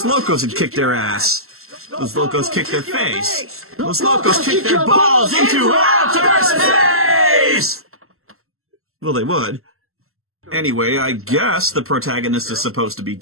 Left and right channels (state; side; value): late; left; 0.62 ms